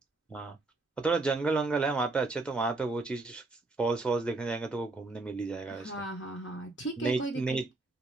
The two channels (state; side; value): quieter; left; 3.2 dB